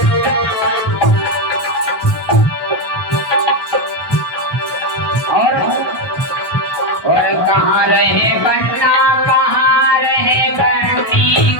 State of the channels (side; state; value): right; late; 1.2 ms